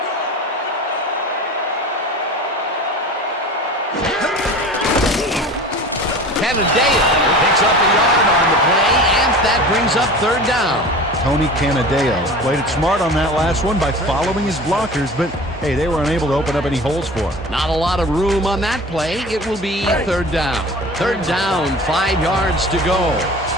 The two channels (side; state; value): both; normal; correlation 0.38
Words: Canadeo picks up a yard on the play, and that brings up 3rd down. Tony Canadeo played it smart on that last one by following his blockers, but hey, they were unable to open up any holes for him. Not a lot of room on that play. It will be 3rd down. 3rd down, 5 yards to go.